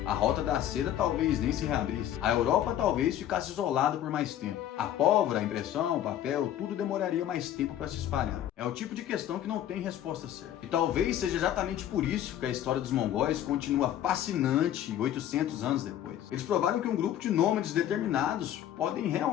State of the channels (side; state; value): right; quieter; 11.3 dB